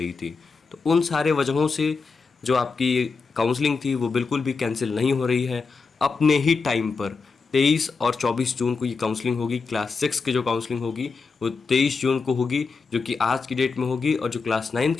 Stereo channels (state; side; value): quieter; right; 4.6 dB